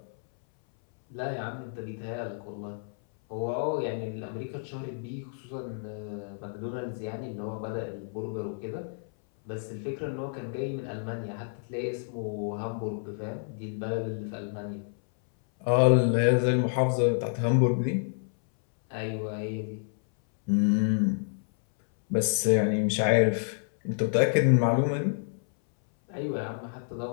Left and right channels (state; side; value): silent; right; 58 dB below the other